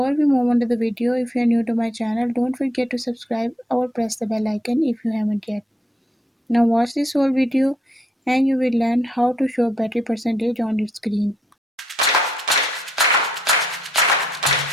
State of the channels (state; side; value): normal; both; correlation 0.73